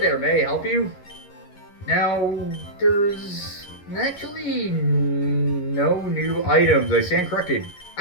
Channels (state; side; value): late; right; 11 ms